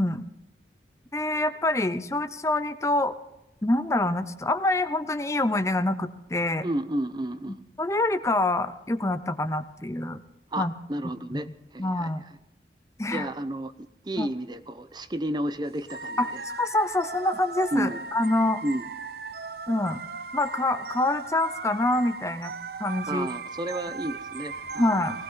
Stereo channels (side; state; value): both; normal; correlation 0.60